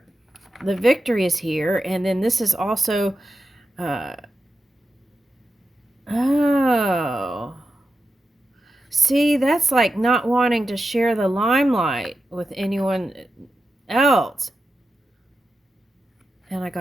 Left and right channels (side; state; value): both; normal; correlation 0.90